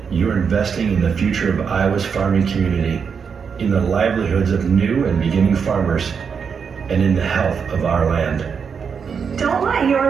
you're investing in the future of Iowa's farming community, in the livelihoods of new and beginning farmers, and in the health of our land. Don't let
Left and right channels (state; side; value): quieter; left; 6.4 dB